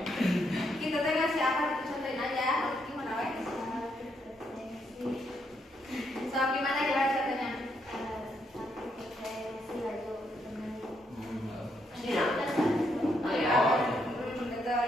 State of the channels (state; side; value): normal; both; correlation 0.76